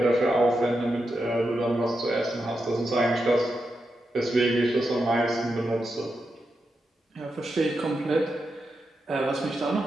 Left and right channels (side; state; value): both; normal; correlation 0.87